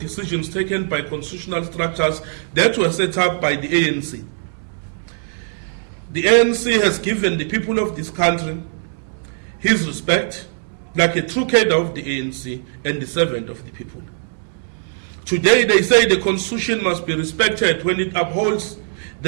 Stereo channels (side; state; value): left; silent; 65 dB below the other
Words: taken by constitutional structures that were set up by the ANC. The ANC has given the people of this country his respect, like a true cadre of the ANC and the servant of the people. Today they say the Constitution must be respected when it upholds